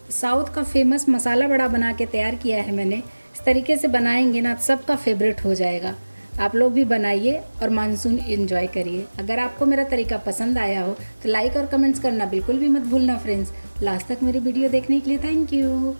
साउथ का फेमस मसाला बड़ा बना के तैयार किया है मैंने। इस तरीके से बनाएंगे ना सबका फेवरेट हो जाएगा। आप लोग भी बनाइए और मानसून एंजॉय करिए। अगर आपको मेरा तरीका पसंद आया हो तो लाइक और कमेंट्स करना बिल्कुल भी मत भूलना फ्रेंड्स। लास्ट तक मेरी वीडियो देखने के लिए थैंक यू।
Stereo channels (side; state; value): both; inverted; correlation -1.00